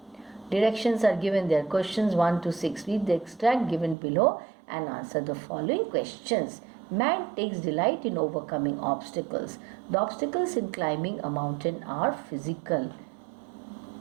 Directions are given there. Questions 1 to 6. Read the extract given below and answer the following questions. Man takes delight in overcoming obstacles. The obstacles in climbing a mountain are physical.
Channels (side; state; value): left; drops out; at 4.0 s